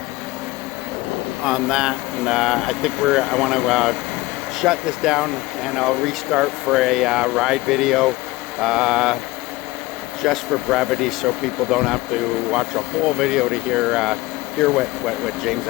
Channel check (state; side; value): quieter; right; 19.7 dB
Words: on that. And I think I want to shut this down, and I'll restart for a ride video. Just for brevity, so people don't have to watch a whole video to hear what James